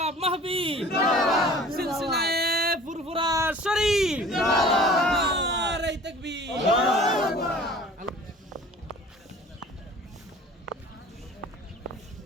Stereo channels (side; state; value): both; normal; correlation 0.46